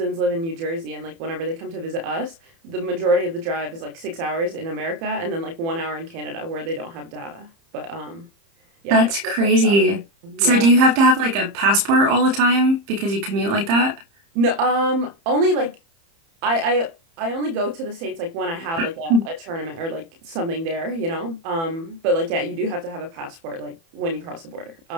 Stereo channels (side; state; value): left; late; 30 ms